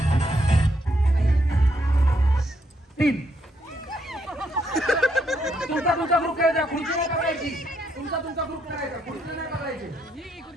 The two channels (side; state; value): both; normal; correlation 0.75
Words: तुमचा ग्रुप करायचा, खुर्ची नाही पकडायची. तुमचा ग्रुप करायचा, खुर्ची नाही पकडायची.